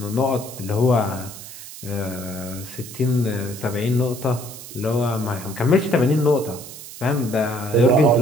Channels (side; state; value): right; noise; hiss, 14 dB below the sound